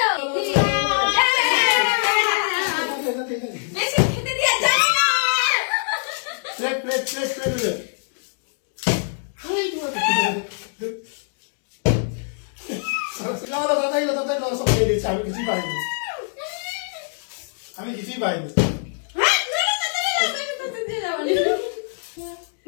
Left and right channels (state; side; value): silent; right; digital silence